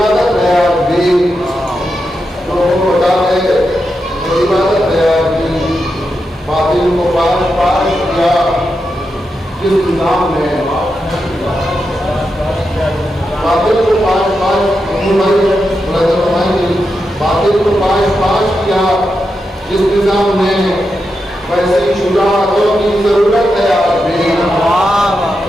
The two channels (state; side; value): normal; both; correlation 0.87